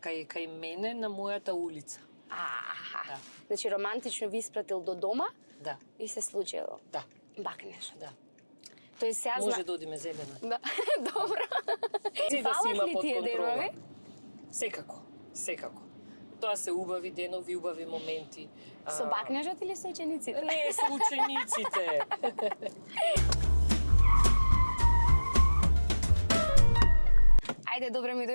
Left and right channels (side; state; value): both; inverted; correlation -1.00